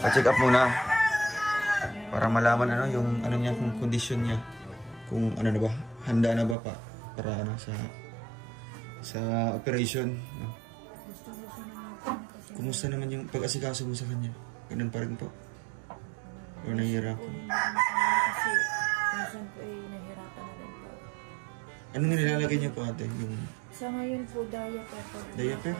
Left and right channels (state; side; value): drops out; left; at 6.6 s